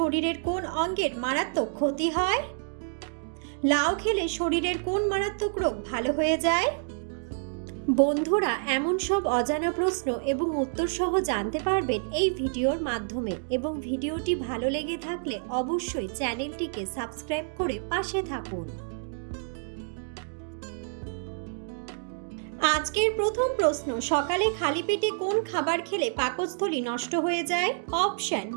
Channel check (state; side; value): silent; left; 59 dB below the other